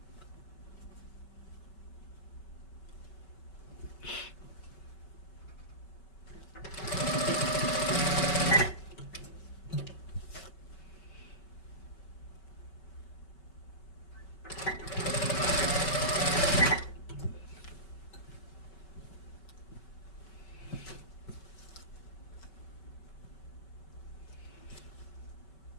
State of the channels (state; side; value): late; right; 5.3 ms